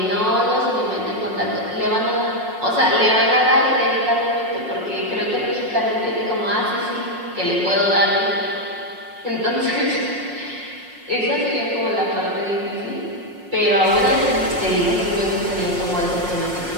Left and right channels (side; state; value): left; late; 5.5 ms